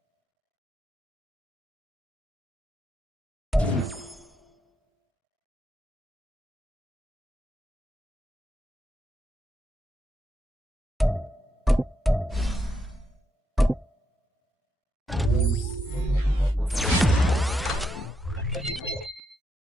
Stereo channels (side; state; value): both; normal; correlation 0.80